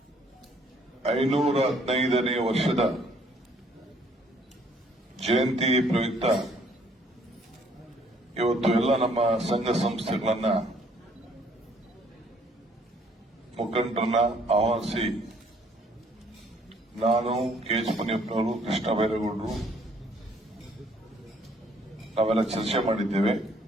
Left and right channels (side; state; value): both; normal; correlation 0.63